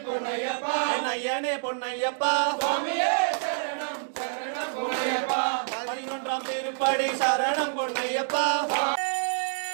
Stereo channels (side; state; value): left; silent; digital silence